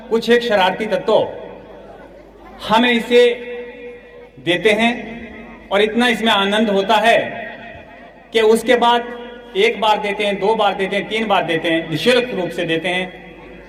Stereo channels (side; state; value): both; identical; correlation 1.00